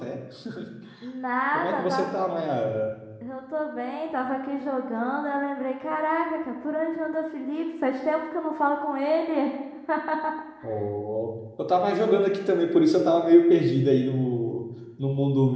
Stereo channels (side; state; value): both; identical; correlation 1.00